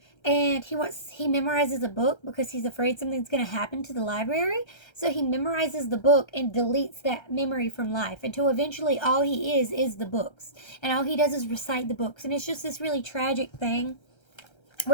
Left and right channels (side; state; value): right; late; 1.3 ms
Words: and he memorizes a book because he's afraid something's going to happen to the library. So he memorizes the book and deletes that memory from life until eventually all he is the books. And all he does is recite the books. And it's just this really tragic thing